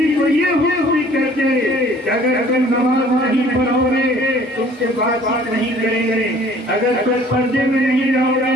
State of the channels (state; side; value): normal; both; correlation 0.53